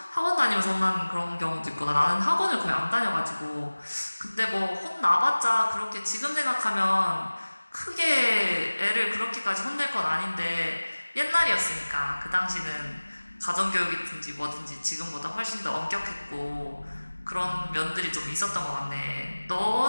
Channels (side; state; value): both; inverted; correlation -1.00